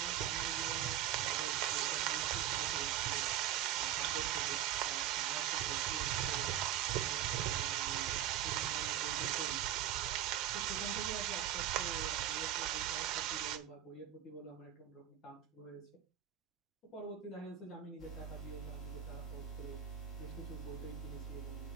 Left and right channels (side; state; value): left; quieter; 10.8 dB